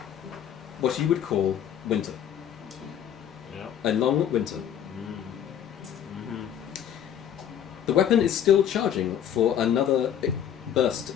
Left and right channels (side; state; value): right; quieter; 9.6 dB